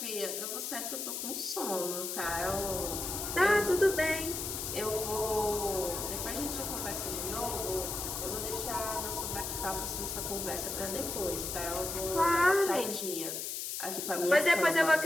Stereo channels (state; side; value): noise; left; hiss, 4 dB below the sound